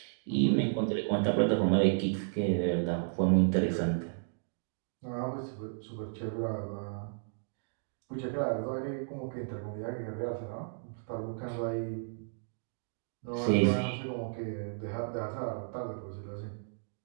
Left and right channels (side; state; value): left; silent; digital silence